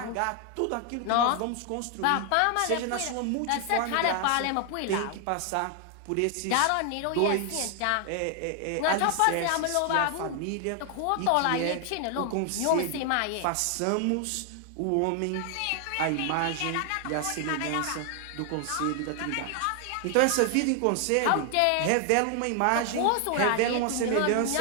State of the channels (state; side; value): different; both; correlation 0.00